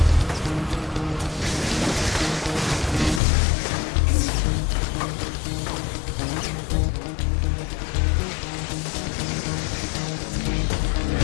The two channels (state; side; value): drops out; right; at 3.2 s